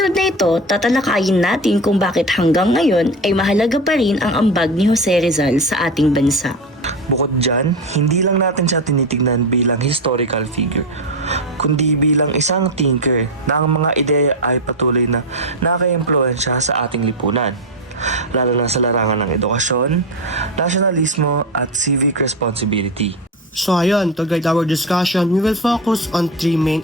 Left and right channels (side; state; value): both; normal; correlation 0.18